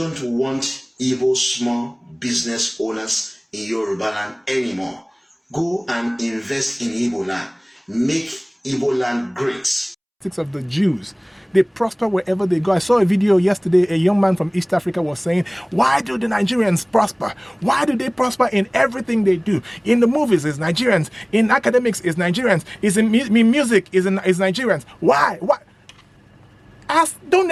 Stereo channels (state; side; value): identical; both; correlation 1.00